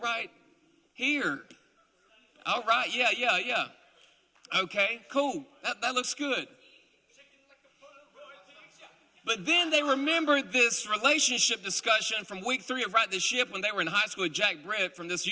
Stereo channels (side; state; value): both; identical; correlation 1.00